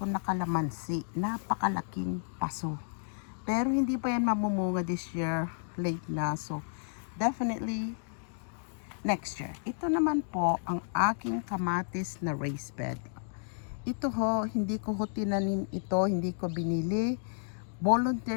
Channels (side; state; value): right; silent; digital silence